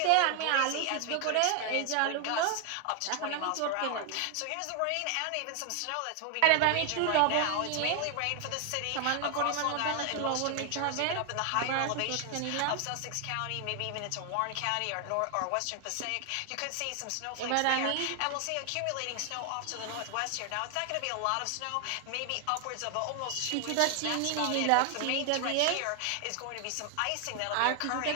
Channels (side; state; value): both; different; correlation 0.00